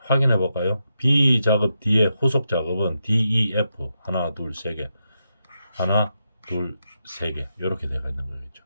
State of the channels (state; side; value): inverted; both; correlation -0.84